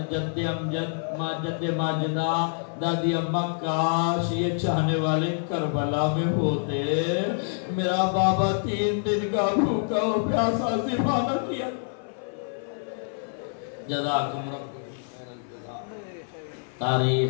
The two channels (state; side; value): silent; right; 56 dB below the other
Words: جد امجد جد ماجدہ دادی اماں کاش یہ چاہنے والے کربلا میں ہوتے, میرا بابا 3 دن کا بھوکا ہو پیاسا ذبح نہ کیا. جزاکم رب خیر الجزا.